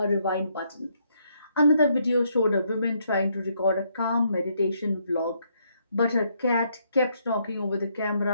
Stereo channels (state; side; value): inverted; both; correlation -0.73